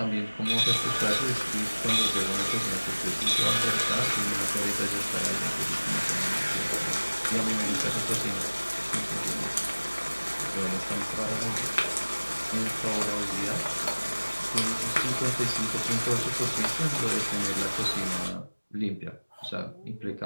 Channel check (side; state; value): both; inverted; correlation -1.00